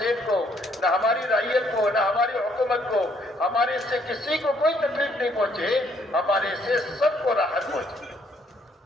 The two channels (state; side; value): normal; both; correlation 0.68